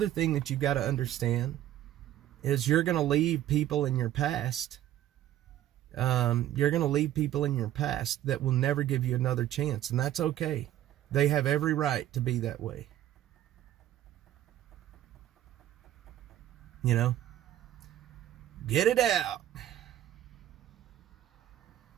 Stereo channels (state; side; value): quieter; left; 12.6 dB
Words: thing that you've got to understand is you're going to leave people in your past. You're going to leave people in your past that will never give you another chance, and that's okay. They have every right to be that way. Get it out.